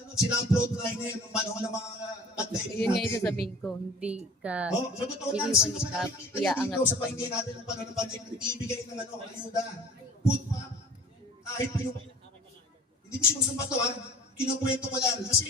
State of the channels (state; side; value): normal; both; correlation 0.45